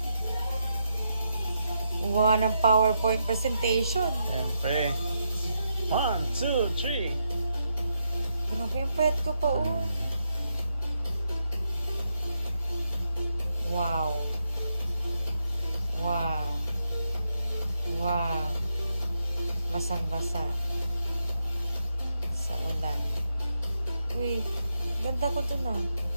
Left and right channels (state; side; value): inverted; both; correlation -0.81